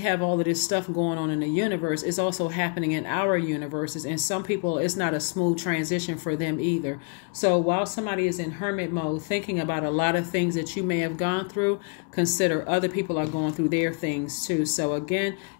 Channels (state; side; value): quieter; right; 38.1 dB